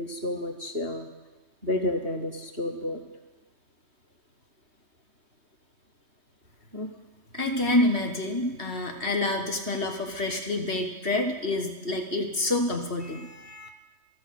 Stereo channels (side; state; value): left; late; 3.2 ms